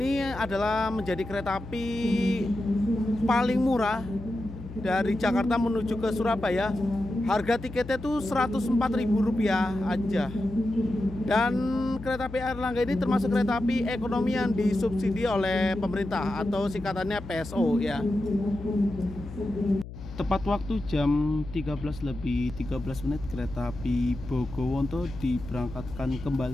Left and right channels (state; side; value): noise; left; hum, 12 dB below the sound